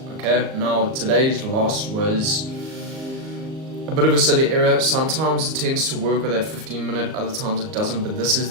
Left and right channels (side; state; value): left; late; 38 ms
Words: Okay, now today's loss was a bit of a silly error. Sometimes it tends to work with that 15 minute, other times it doesn't, but this is